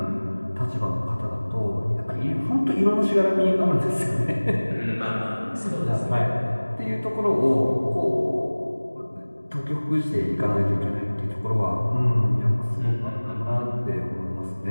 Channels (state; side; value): inverted; both; correlation -1.00